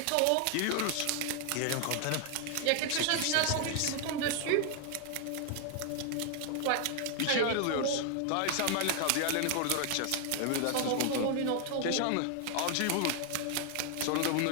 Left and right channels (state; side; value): different; both; correlation 0.00